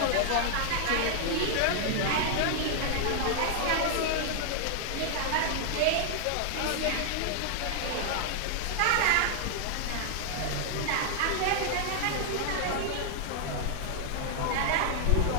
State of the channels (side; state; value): both; different; correlation -0.01